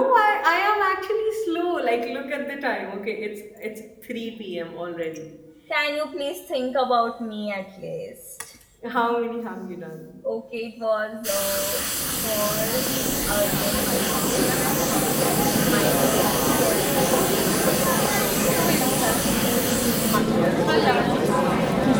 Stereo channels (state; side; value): identical; both; correlation 1.00